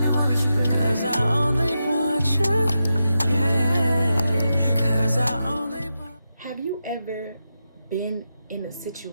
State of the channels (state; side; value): inverted; both; correlation -0.88